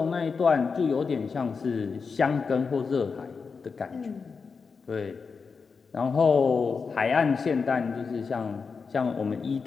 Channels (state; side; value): quieter; right; 5.2 dB